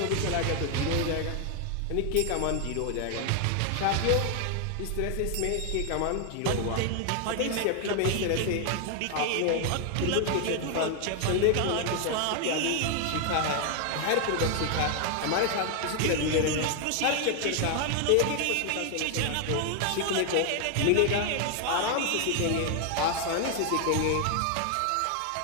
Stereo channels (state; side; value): different; both; correlation 0.00